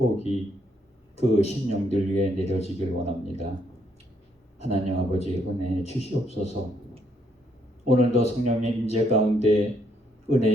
그 심령들 위에 내려지길 원합니다. 하나님 아버지 은혜 주시옵소서. 오늘도 성령의 임재 가운데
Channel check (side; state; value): both; normal; correlation 0.72